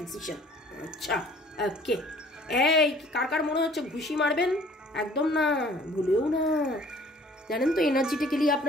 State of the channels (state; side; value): normal; both; correlation 0.54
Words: ডিসিশন। আচ্ছা, ওকে। এই কার কার মনে হচ্ছে ঘুষি মারবেন? একদম না, ভুলেও না। জানেন তো এনার্জিটিক্যালি